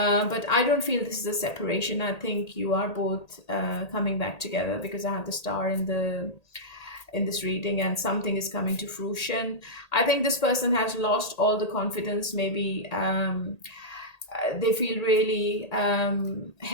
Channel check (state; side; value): late; right; 1.8 ms